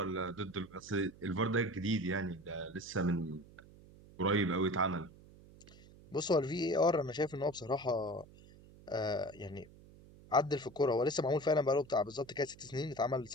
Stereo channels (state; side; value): noise; right; hum, 22 dB below the sound